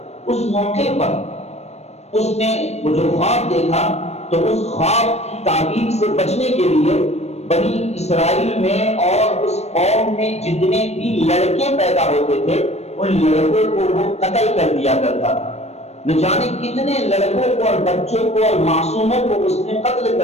اس موقع پر اس نے وہ جو خواب دیکھا تو اس خواب کی تعبیر سے بچنے کے لیے بنی اسرائیل میں اور اس قوم میں جتنے بھی لڑکے پیدا ہوتے تھے ان لڑکوں کو وہ قتل کر دیا کرتا تھا۔ نہ جانے کتنے لڑکوں کو اور بچوں کو اور معصوموں کو اس نے قتل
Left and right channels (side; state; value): right; late; 0.31 ms